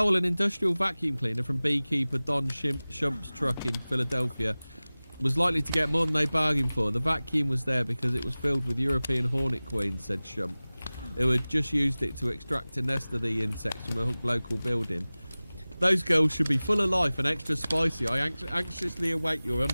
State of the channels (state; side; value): inverted; both; correlation -0.99